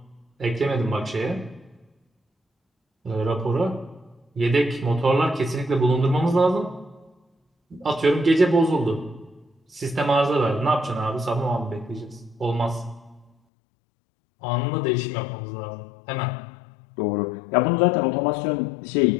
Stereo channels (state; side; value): drops out; right; at 13.3 s